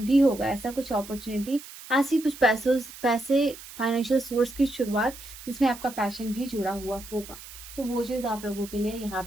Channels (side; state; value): right; noise; hiss, 15 dB below the sound